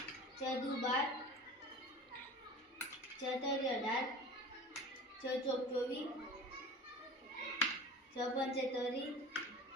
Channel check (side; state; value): both; normal; correlation 0.37